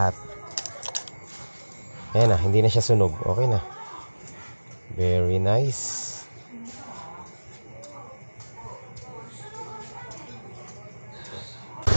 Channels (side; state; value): both; inverted; correlation -1.00